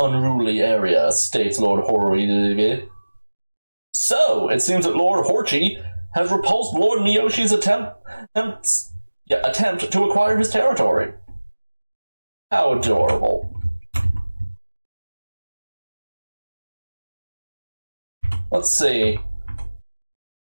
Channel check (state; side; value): inverted; both; correlation -1.00